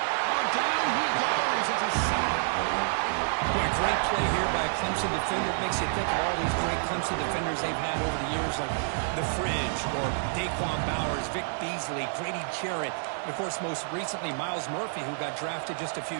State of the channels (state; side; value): silent; left; digital silence